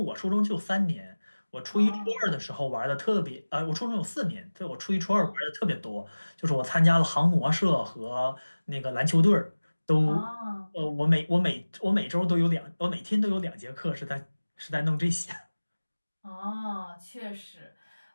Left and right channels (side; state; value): both; inverted; correlation -1.00